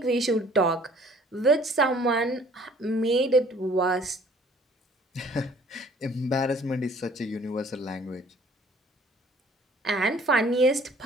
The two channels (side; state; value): both; normal; correlation 0.55